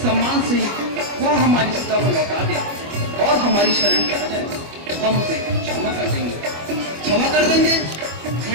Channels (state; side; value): late; left; 25 ms